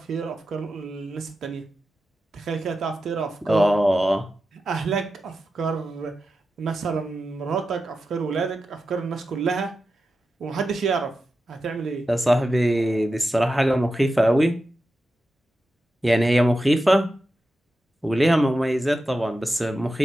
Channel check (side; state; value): both; normal; correlation 0.91